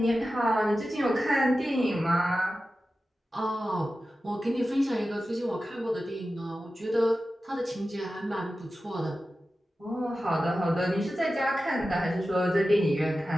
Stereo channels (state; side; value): normal; both; correlation 0.94